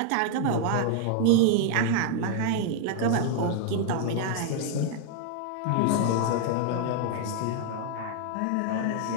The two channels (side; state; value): both; different; correlation 0.00